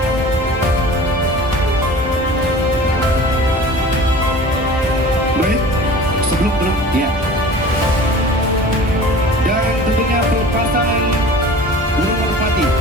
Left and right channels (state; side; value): normal; both; correlation 0.41